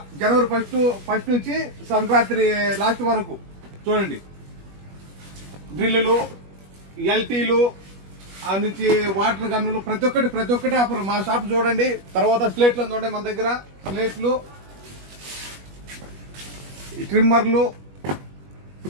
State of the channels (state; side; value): late; left; 21 ms